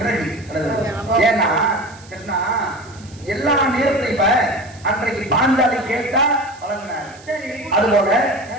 ஏன்னா கிருஷ்ணா எல்லா நேரத்திலும் இப்ப அன்றைக்கு பாஞ்சாலி கேட்டா வழங்கினார். அதுபோல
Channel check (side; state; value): right; noise; hiss, 24 dB below the sound